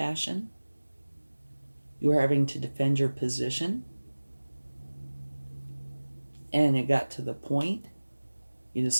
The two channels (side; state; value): both; inverted; correlation -1.00